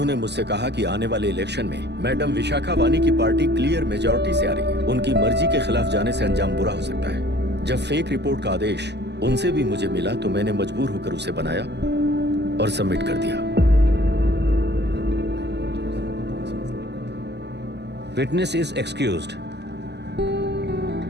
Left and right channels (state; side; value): late; left; 0.50 ms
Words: मुझसे कहा कि आने वाले इलेक्शन में मैडम विशाखा वानी की पार्टी क्लियर मेजॉरिटी से आ रही है, उनकी मर्जी के खिलाफ जाने से अंजाम बुरा हो सकता है। जब फेक रिपोर्ट का आदेश उनसे भी मुझे मिला तो मैंने मजबूर होकर उसे बनाया और सबमिट कर दिया। Witness is excused.